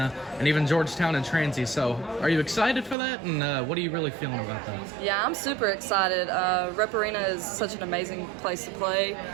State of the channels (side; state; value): left; drops out; at 3.0 s